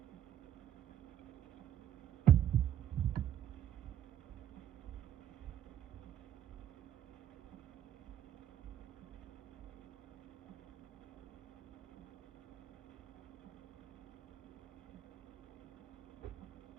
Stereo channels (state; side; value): quieter; left; 10.4 dB